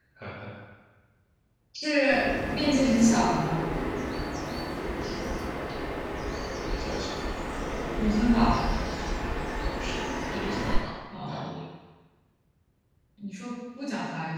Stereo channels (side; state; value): both; identical; correlation 1.00